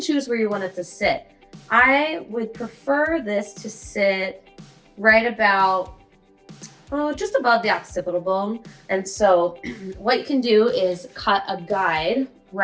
choose where you want it to sit. I would prefer this to sit right about, just above the occipital bone. And so what you can do is cut a guide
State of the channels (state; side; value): identical; both; correlation 1.00